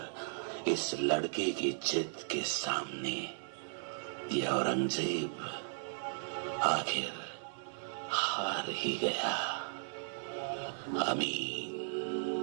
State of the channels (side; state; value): left; silent; 54 dB below the other